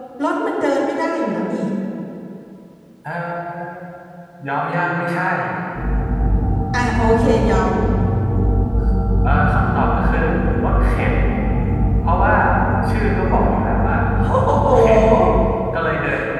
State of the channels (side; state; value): both; identical; correlation 1.00